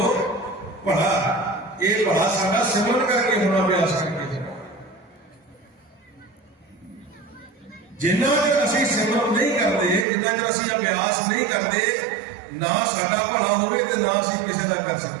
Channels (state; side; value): drops out; left; at 10.1 s